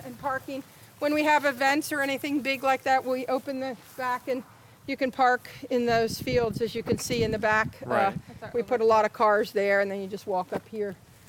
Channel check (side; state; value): both; identical; correlation 1.00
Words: and parking. When we have events or anything big like that, we open the back and you can park in those fields, as you can see in the back. Right. That's our We put a lot of cars there, and then you just walk up here.